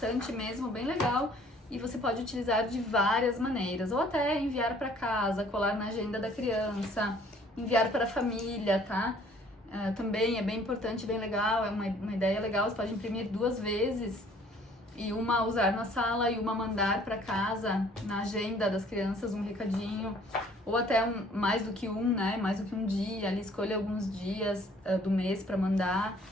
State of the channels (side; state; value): both; normal; correlation 0.57